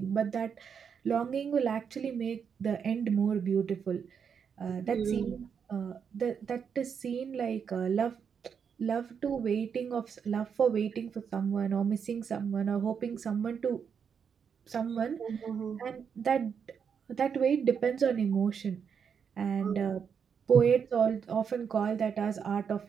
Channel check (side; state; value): left; quieter; 6.9 dB